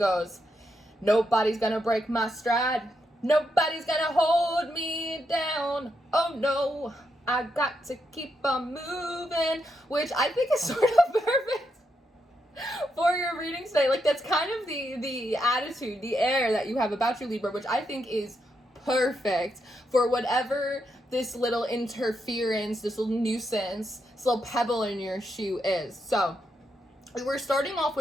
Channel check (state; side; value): normal; both; correlation 0.81